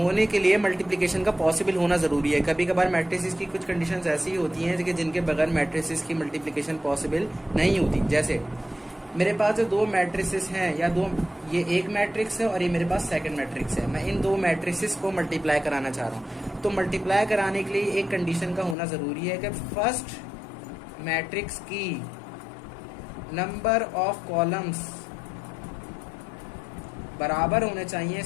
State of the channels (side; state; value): right; drops out; at 18.8 s